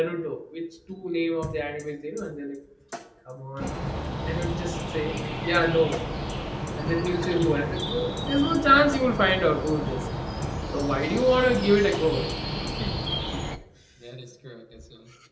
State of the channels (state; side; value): identical; both; correlation 1.00